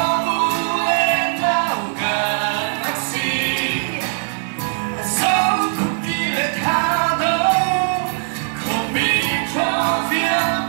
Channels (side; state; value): left; silent; 66 dB below the other